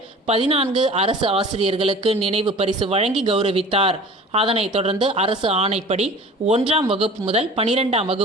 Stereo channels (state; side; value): normal; both; correlation 0.42